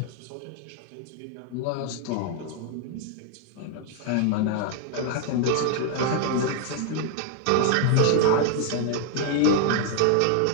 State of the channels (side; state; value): both; different; correlation 0.00